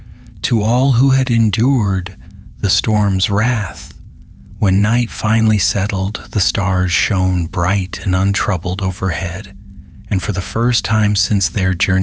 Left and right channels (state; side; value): identical; both; correlation 1.00